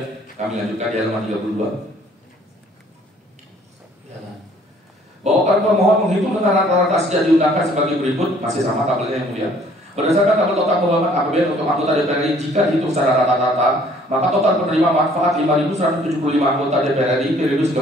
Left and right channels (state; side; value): normal; both; correlation 0.58